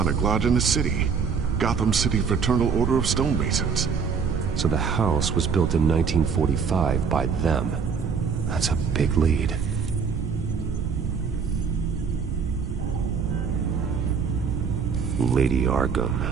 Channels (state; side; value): quieter; left; 6.0 dB